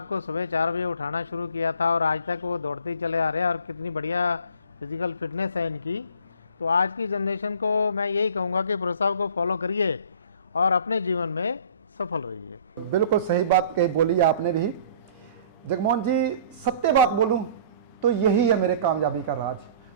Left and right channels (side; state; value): both; inverted; correlation -0.49